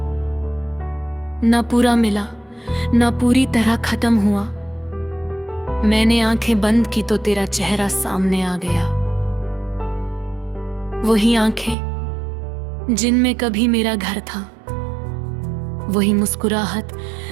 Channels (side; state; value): left; drops out; at 11.8 s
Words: ना पूरा मिला ना पूरी तरह खत्म हुआ। मैंने आंखें बंद की तो तेरा चेहरा सामने आ गया। वही आंखें जिनमें कभी मेरा घर था, वही मुस्कुराहट